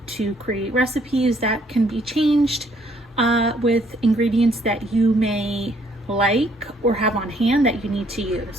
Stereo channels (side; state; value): both; normal; correlation 0.66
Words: to create recipes that can be changed with ingredients that you may like or have on hand that you need to